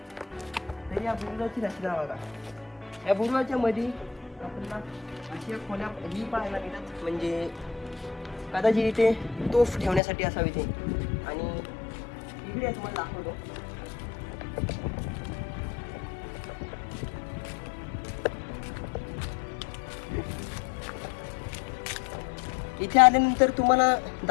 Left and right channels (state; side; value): drops out; right; at 10.0 s